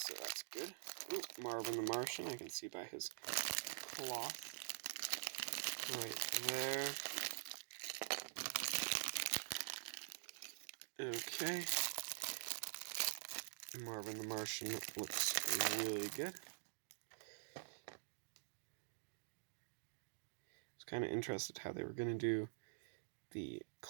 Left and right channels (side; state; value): left; silent; digital silence